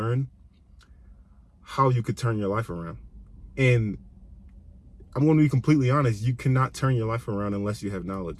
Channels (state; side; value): identical; both; correlation 1.00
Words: how you could turn your life around. And I'm going to be completely honest, you cannot turn your life around unless you have